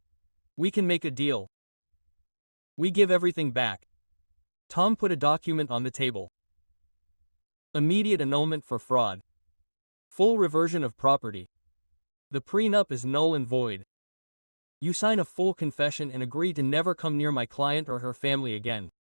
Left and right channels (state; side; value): inverted; both; correlation -1.00